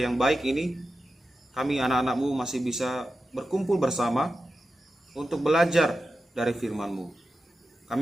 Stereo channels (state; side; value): normal; both; correlation 0.91